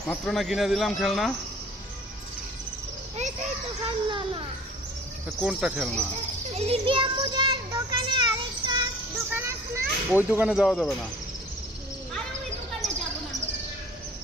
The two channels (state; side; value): normal; both; correlation 0.47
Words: মাত্র না কিনে দিলাম খেলনা। কোনটা খেলনা? ওই দোকানে যাওয়া যাবে না।